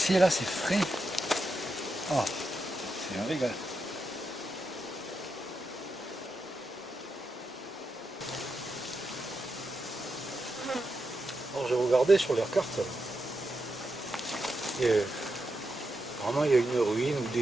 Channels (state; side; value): normal; both; correlation 0.86